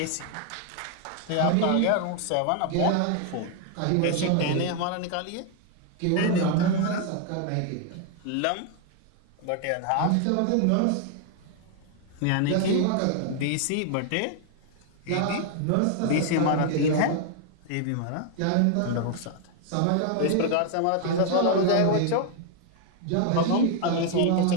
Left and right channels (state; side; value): different; both; correlation 0.00